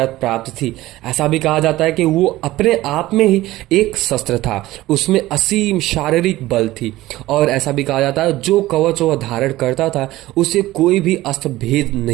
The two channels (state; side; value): quieter; left; 16.9 dB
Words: प्राप्त थी। ऐसा भी कहा जाता है कि वो अपने आप में ही एक शस्त्र था, उसमें असीम शारीरिक बल थी। और ऐसा भी कहा जाता है जो कवच वह धारण करता था उसे कोई भी अस्त्र भेद